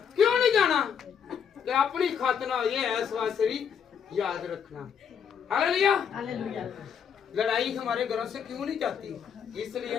क्यों नहीं जाना? कि अपनी खत ना ये इस वास्ते भी याद रखना। हालेलुया। लड़ाई हमारे घरों से क्यों नहीं जाती? इसलिए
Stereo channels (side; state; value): right; quieter; 7.6 dB